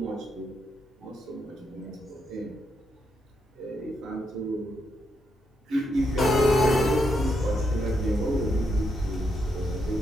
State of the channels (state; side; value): normal; both; correlation 0.80